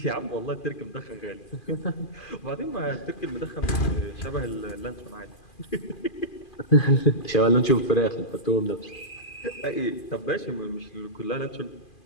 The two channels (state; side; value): late; right; 2.5 ms